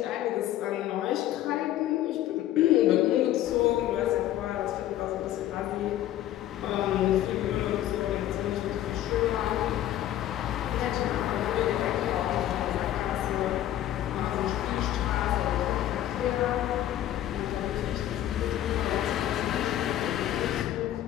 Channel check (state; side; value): quieter; right; 12.8 dB